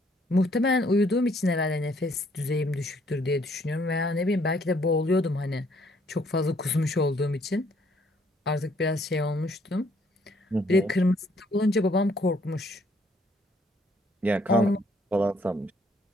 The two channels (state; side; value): normal; both; correlation 0.66